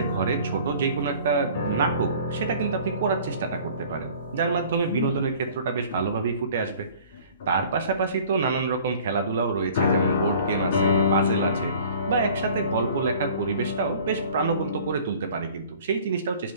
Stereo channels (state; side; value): inverted; both; correlation -0.49